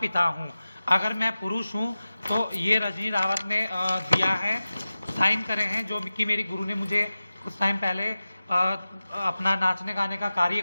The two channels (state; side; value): inverted; both; correlation -0.95